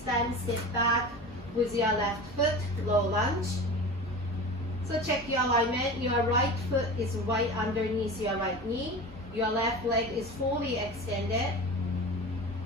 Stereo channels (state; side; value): normal; both; correlation 0.32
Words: time, sit back with your left foot, low lunge. So check your alignment. Your right foot is right underneath your right knee. Your left leg is fully extended.